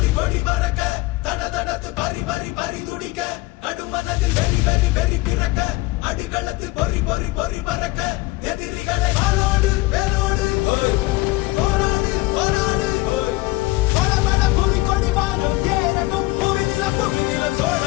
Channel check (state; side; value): quieter; right; 20.8 dB